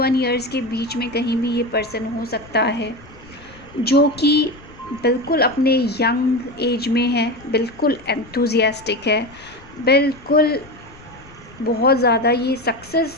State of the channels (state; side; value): noise; left; rumble, 22 dB below the sound